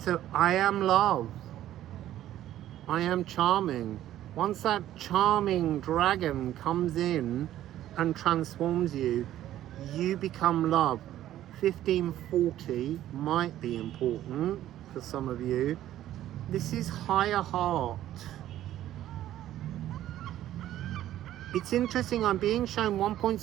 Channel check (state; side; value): quieter; left; 12.9 dB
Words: I am love. I am charming. Once that charming dragon comes in and transforms you, you become love. 1540 might be important for some of you. This is higher heart. It's interesting, I'm being shown